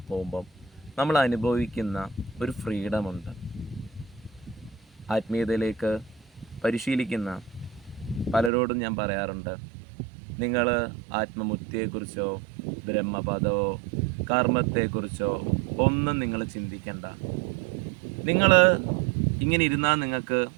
പോകുമ്പം നമ്മൾ അനുഭവിക്കുന്ന ഒരു ഫ്രീഡമുണ്ട്. ആത്മീയതയിലേക്ക് പരിശീലിക്കുന്ന പലരോടും ഞാൻ പറയാറുണ്ട്, നിങ്ങൾ ആത്മമുക്തിയെക്കുറിച്ചോ ബ്രഹ്മപദമോ കർമ്മത്തെക്കുറിച്ചോ ഒന്നും നിങ്ങൾ ചിന്തിക്കണ്ട. നിങ്ങൾ ഇങ്ങനെ ഇരുന്നാൽ നിങ്ങൾക്ക്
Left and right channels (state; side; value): drops out; left; at 8.5 s